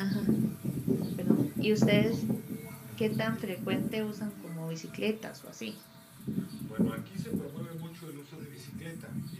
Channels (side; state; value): both; identical; correlation 1.00